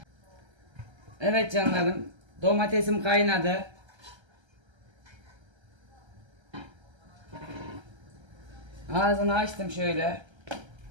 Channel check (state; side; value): late; left; 1.3 ms